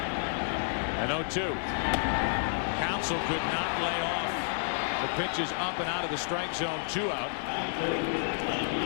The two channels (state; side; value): silent; right; 56 dB below the other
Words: And 0-2. Counsell could not lay off the pitches up and out of the strike zone. 2 out.